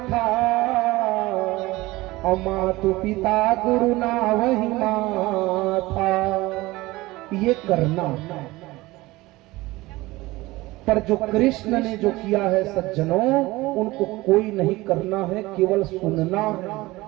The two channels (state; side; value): quieter; left; 19.8 dB